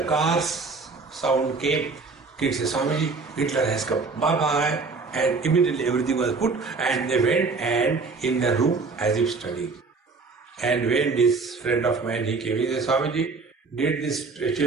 car's sound came, kids said, Swamiji, Hitler has come, bye-bye. And immediately everything was put and they went and in the room as if studying. And when this friend of mine, he came, he said, Swamiji, did these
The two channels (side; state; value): left; quieter; 4.2 dB